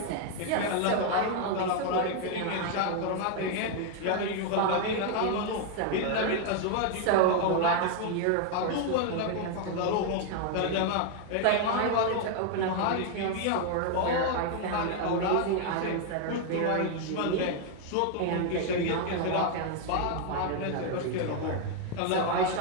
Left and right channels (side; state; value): both; different; correlation 0.00